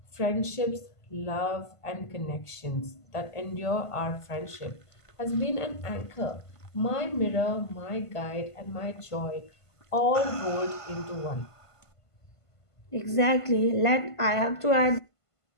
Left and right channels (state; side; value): late; right; 1.5 ms